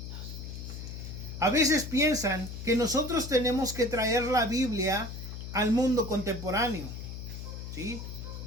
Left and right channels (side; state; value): left; noise; hum, 8 dB below the sound